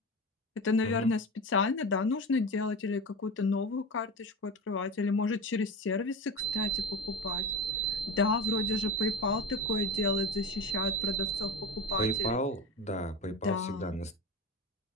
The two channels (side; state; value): both; normal; correlation 0.26